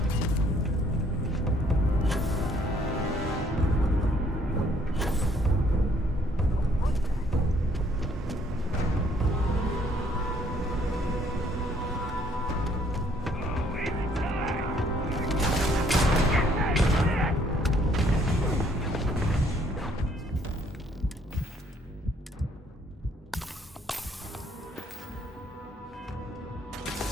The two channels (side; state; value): both; normal; correlation 0.64